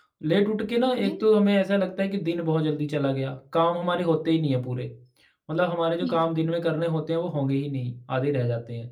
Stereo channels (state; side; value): identical; both; correlation 1.00